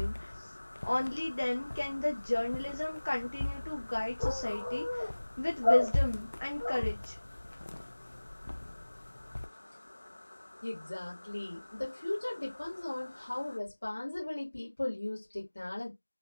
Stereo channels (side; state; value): both; inverted; correlation -1.00